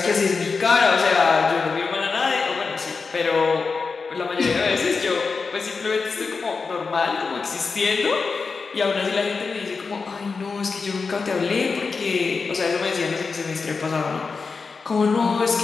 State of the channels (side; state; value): right; quieter; 4.7 dB